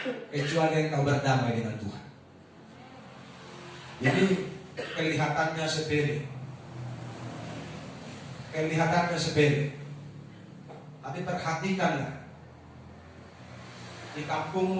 Kecuali engkau berdamai dengan Tuhan. Jadi kelihatannya sepele, tapi perhatikanlah di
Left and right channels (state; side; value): identical; both; correlation 1.00